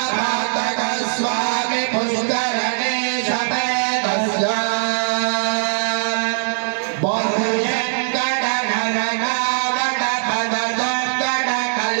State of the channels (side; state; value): left; silent; 62 dB below the other